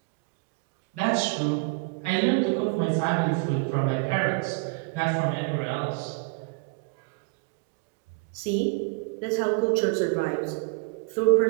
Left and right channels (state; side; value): quieter; left; 32.5 dB